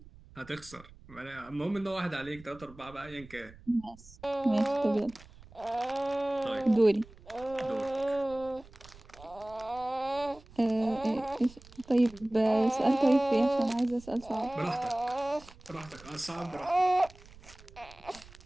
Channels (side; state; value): right; noise; rumble, 21 dB below the sound